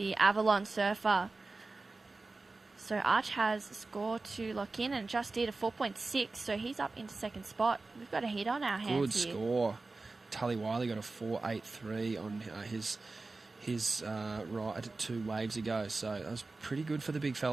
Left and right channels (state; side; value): quieter; left; 3.6 dB